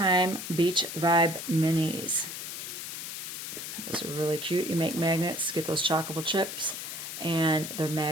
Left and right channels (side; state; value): left; noise; hiss, 7 dB below the sound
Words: Beach Vibe Minis. Those are really cute. You make magnets, get those chalkable chips, and they're